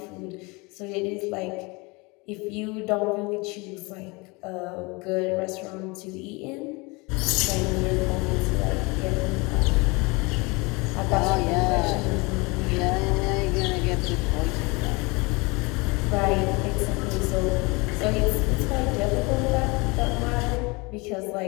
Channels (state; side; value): quieter; right; 26.6 dB